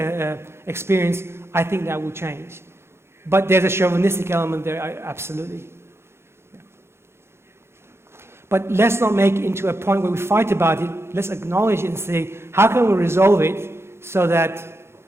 experience, I think that will change. But there's a chauvinistic element there, absolutely. But let's not make it into a point where we fight about it. Let's acknowledge it and say, how can we resolve it so that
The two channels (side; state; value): left; late; 0.12 ms